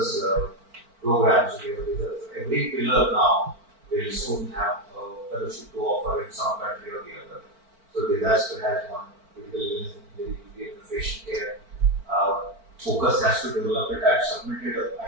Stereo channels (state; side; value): late; left; 4.5 ms